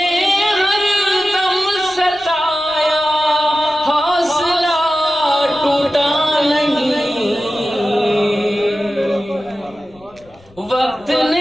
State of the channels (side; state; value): left; noise; rumble, 28 dB below the sound